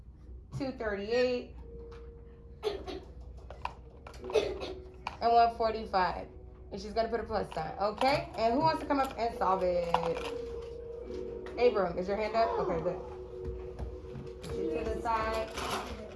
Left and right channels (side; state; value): both; identical; correlation 1.00